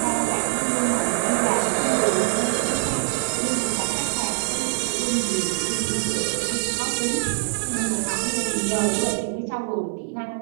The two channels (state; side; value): silent; left; digital silence